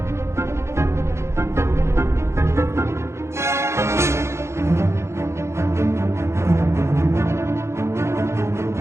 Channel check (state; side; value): late; left; 0.13 ms